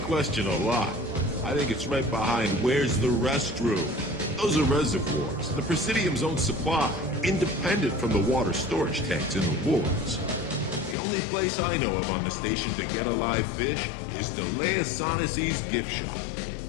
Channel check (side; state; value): right; drops out; at 11.0 s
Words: question a lot. I think it's right behind where's the restroom. Those are reservoirs, the Presidium's own supply, independent from the water storage tanks in the wards. The only place I know of on the station to get a live fish is Delea Sonasy's gift shop.